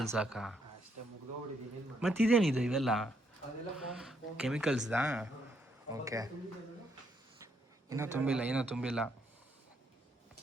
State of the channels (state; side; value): normal; both; correlation 0.74